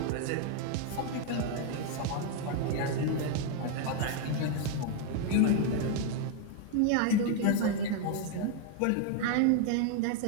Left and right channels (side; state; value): both; different; correlation 0.00